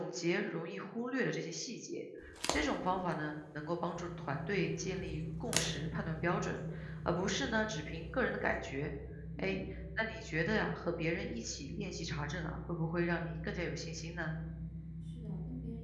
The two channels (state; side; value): identical; both; correlation 1.00